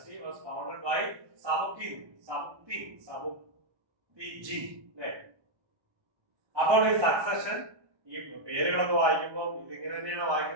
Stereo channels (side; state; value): left; late; 1.2 ms